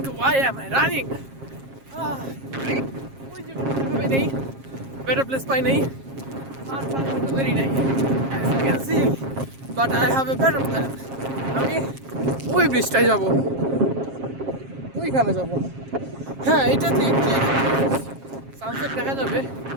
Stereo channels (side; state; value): left; late; 7.4 ms